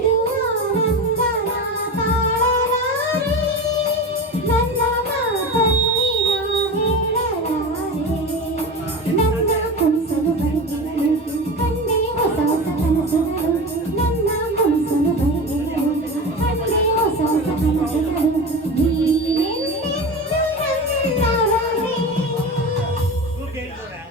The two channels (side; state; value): both; normal; correlation 0.27